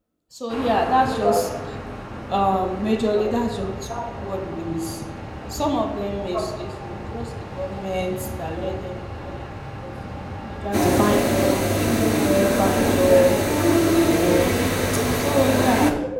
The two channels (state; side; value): identical; both; correlation 1.00